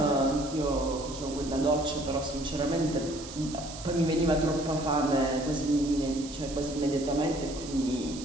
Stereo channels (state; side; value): noise; right; hiss, 13 dB below the sound